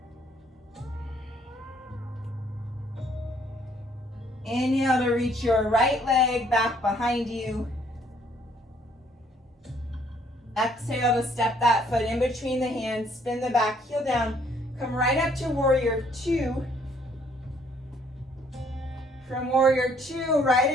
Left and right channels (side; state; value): both; normal; correlation 0.64